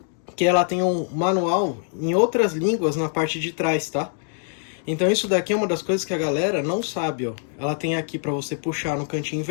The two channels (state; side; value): silent; right; 59 dB below the other